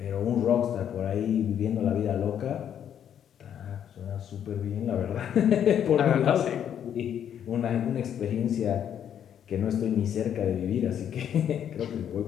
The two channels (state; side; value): quieter; right; 9.3 dB